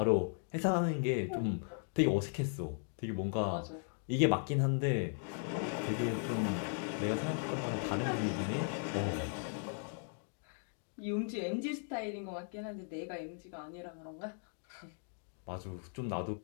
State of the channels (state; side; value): silent; right; 53 dB below the other